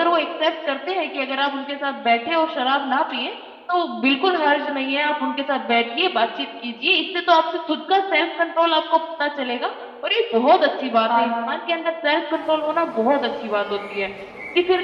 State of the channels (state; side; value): identical; both; correlation 1.00